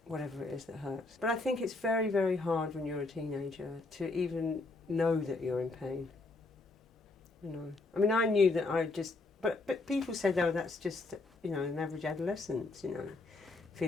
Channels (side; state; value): right; quieter; 3.3 dB